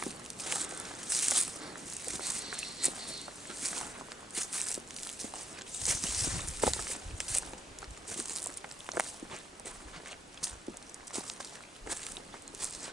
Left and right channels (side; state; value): both; normal; correlation 0.82